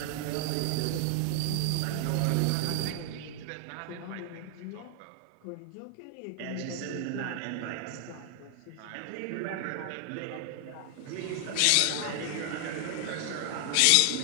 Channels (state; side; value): different; both; correlation 0.00